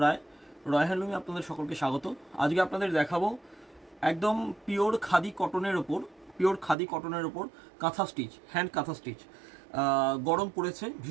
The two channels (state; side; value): drops out; left; at 6.8 s